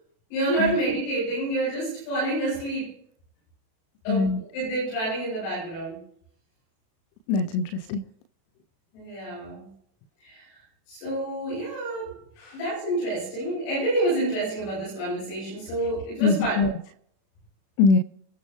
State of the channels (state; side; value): late; right; 36 ms